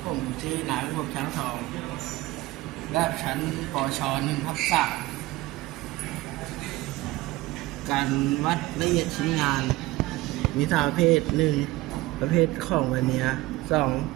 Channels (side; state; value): left; quieter; 19.0 dB